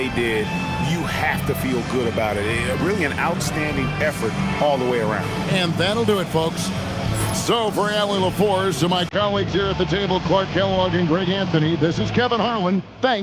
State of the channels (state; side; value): identical; both; correlation 1.00